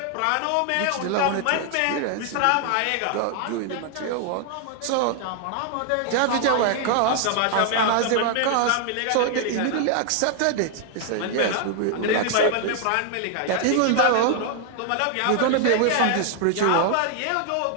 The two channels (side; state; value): both; different; correlation 0.00